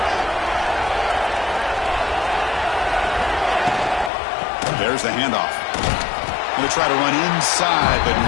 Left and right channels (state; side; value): drops out; right; at 4.1 s